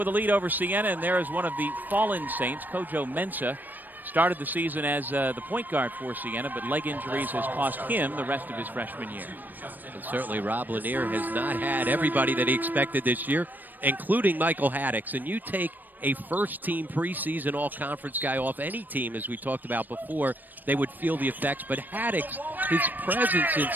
a lead over Siena, and there is one of the fallen Saints, Kojo Mensah, started the season as the point guard for Siena, but leg injuries has cost him the rest of his freshman year. And certainly Rob Lanier has not had everybody that he expected this year, including Michael Haddix. And you take a first-team preseason all-conference guy off any team, as we talked about before, they would feel the effects. But Haddix, his presence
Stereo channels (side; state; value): left; late; 0.088 ms